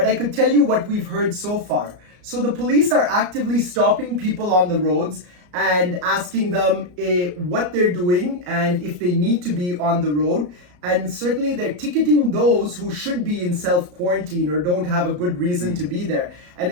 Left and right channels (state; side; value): late; left; 34 ms